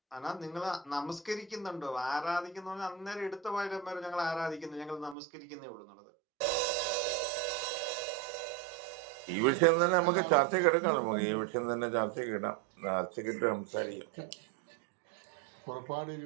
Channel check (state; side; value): drops out; left; at 5.2 s